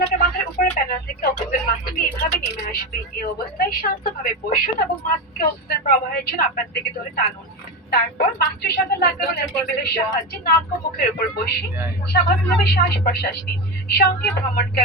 মাথার উপরে প্যানেল থেকে অক্সিজেন মাস্কটি এভাবে নেমে আসবে। এই অবস্থায় শান্তভাবে বসুন এবং মাস্ককে অক্সিজেন প্রবাহের জন্য আপনার দিকে ধরে টানুন। তারপর মাস্কের সাথে লাগানো টেবিলের সাহায্যে নাক ও মুখের উপর বসে স্বাভাবিকভাবে শ্বাস প্রশ্বাস নিন। সঙ্গে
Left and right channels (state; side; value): normal; both; correlation 0.18